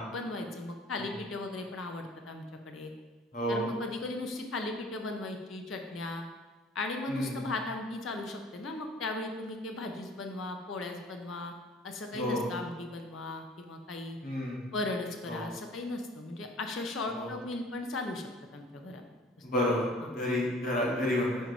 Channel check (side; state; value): both; normal; correlation 0.50